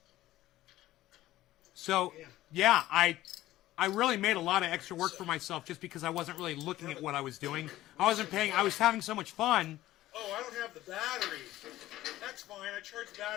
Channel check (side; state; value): right; quieter; 15.3 dB